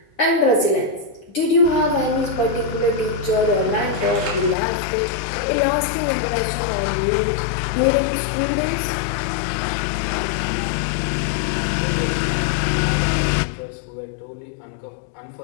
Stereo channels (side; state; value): right; drops out; at 4.5 s